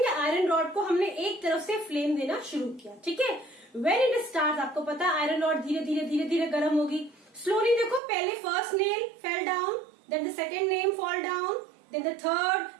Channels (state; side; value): drops out; left; at 8.0 s